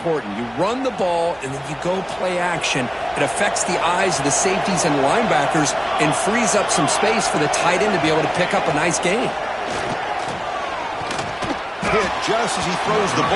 You run the ball, and then you go play action. It affects the eyes of the safeties and linebackers and frees up some space for the tight end to be able to pick up a nice gain. Hit just as he throws the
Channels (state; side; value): identical; both; correlation 1.00